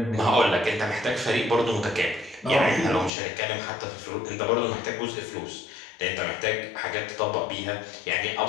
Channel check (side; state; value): right; drops out; at 3.1 s